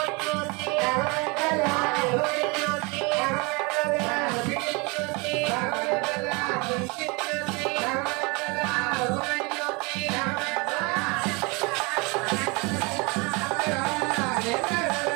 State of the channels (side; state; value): left; quieter; 28.5 dB